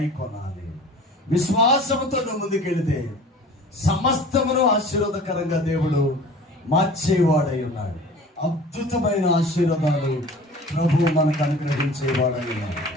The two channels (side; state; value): both; normal; correlation 0.43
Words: విశ్వాసముతో నువ్వు ముందుకెళితే సమస్తమును ఆశీర్వాదకరంగా దేవుడు మార్చేవాడై ఉన్నాడు. అద్భుతమైన ఆశీర్వాదాలు ప్రభు మనకు అనుగ్రహించేవాడై ఉన్నాడు.